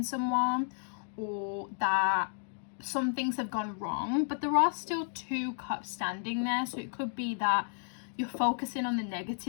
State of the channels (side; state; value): right; silent; digital silence